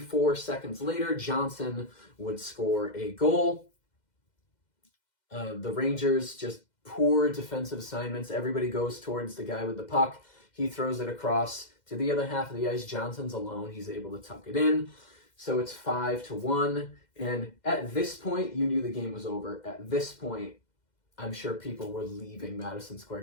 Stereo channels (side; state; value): right; late; 2.1 ms